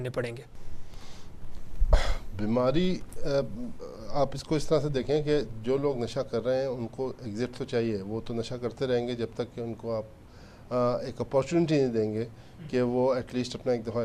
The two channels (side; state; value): both; identical; correlation 1.00